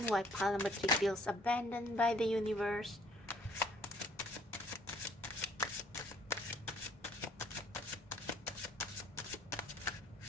why pile number 3 feels abandoned by the universe?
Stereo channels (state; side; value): normal; both; correlation 0.60